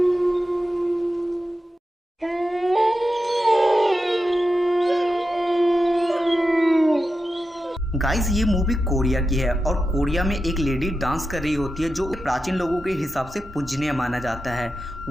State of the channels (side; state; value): both; normal; correlation 0.90